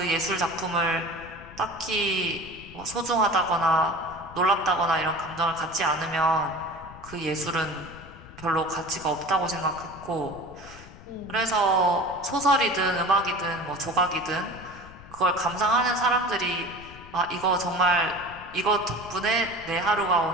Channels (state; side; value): noise; left; rumble, 18 dB below the sound